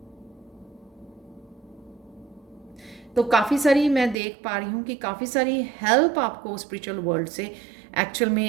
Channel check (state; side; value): drops out; left; at 4.2 s